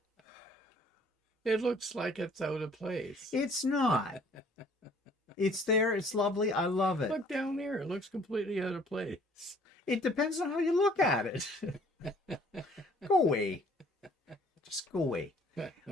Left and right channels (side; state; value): both; normal; correlation 0.57